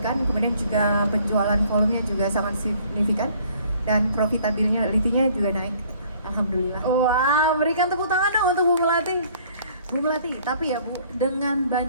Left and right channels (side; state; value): both; inverted; correlation -0.58